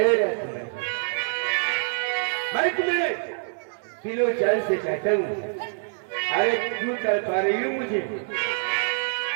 समय हर तुम्हें किलो चाल से चाहता हूँ। अरे क्यों कर पा रही हूँ मुझे?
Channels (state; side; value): silent; left; digital silence